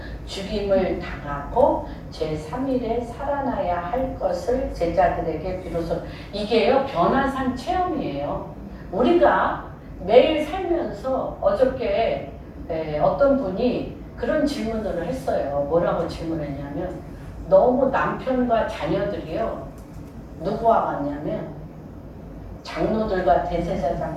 죽임을 당하고 제3일에 살아나야 할 것을 제자들에게 비로소 이게요 변화산 체험이에요. 우리가 매일 살면서 어저께 어떤 분이 그런 질문을 했어요. 뭐라고 질문했냐면 너무 남편과 자녀들이요 누구와 같냐면 장로들과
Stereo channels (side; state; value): both; identical; correlation 1.00